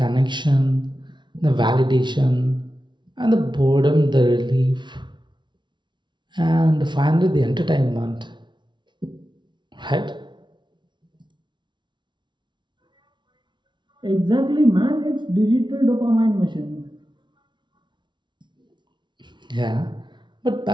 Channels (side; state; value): left; late; 0.23 ms